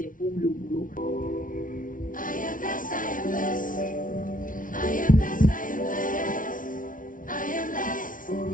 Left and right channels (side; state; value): right; late; 0.38 ms